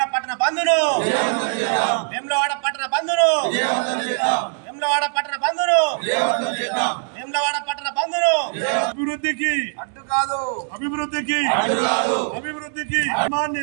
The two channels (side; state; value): left; silent; digital silence